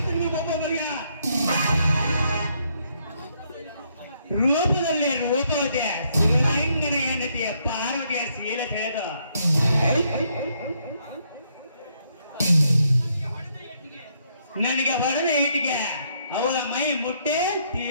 ರೂಪದಲ್ಲಿ ರೂಪವತೆ ಶಿವಲಿಂಗನ ಹೆಂಡತಿಯ ಪಾರ್ವತಿಯ ಶೀಲ ತಿಳಿದು ನನಗೆ ಹೊಡೆದ ಈಟಿಗೆ ಅವಳ ಮೈ ಮುಟ್ಟೆ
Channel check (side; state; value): both; inverted; correlation -0.73